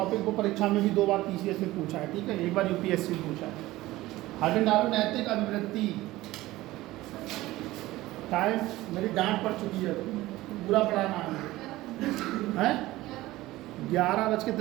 को परीक्षा में भी 2 बार पीसीएस में पूछा है, ठीक है, 1 बार यूपीएससी में पूछा है। हार्डन डालो नैतिक अभिवृत्ति। टाइम मेरी डांट पड़ चुकी है, पूरा पढ़ाना है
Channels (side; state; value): left; quieter; 17.6 dB